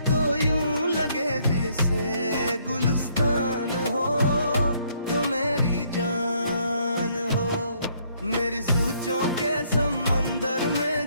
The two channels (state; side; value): inverted; both; correlation -0.68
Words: तो यूं लगे जैसे गुलिस्तान हो, तो मेरी जान हो। मेरी सोचों के समंदर में